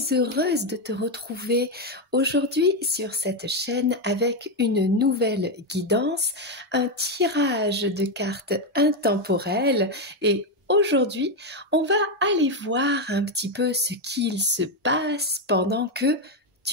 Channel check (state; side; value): normal; both; correlation 0.06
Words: heureuse de te retrouver aujourd'hui sur cette chaîne avec une nouvelle guidance, un tirage de cartes intemporelles et aujourd'hui, on va aller voir un petit peu ce qu'il se passe pendant que